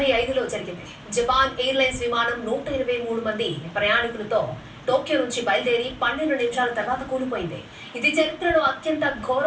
జరిగింది. జపాన్ ఎయిర్లైన్స్ విమానం 123 మంది ప్రయాణికులతో టోక్యో నుంచి బయలుదేరి 12 నిమిషాల తర్వాత కూలిపోయింది. ఇది చరిత్రలో అత్యంత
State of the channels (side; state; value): both; identical; correlation 1.00